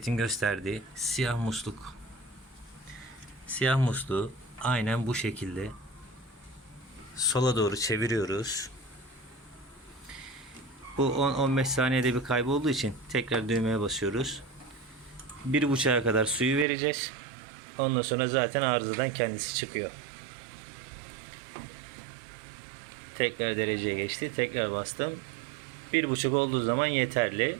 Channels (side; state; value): left; drops out; at 16.7 s